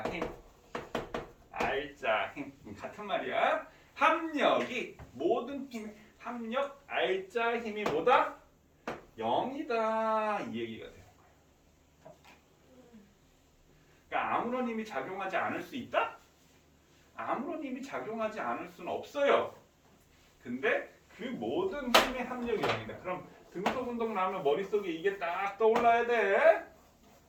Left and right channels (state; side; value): identical; both; correlation 1.00